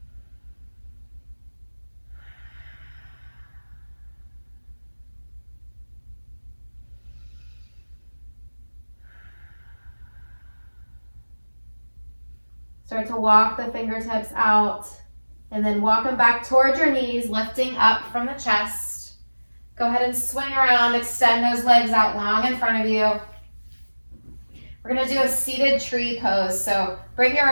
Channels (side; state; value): both; inverted; correlation -1.00